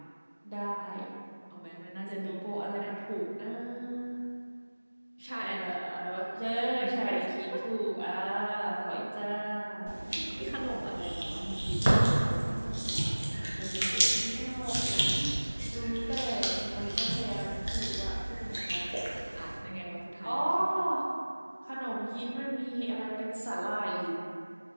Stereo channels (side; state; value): both; inverted; correlation -1.00